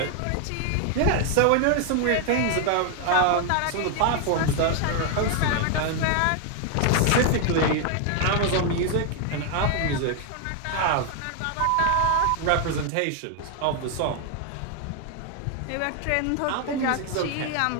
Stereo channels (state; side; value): different; both; correlation 0.00